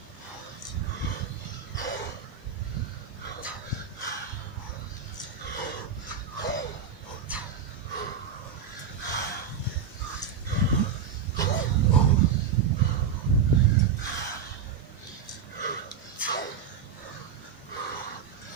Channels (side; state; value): left; quieter; 6.8 dB